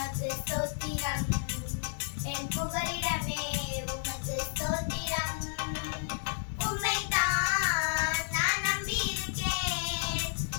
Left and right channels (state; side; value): silent; right; 57 dB below the other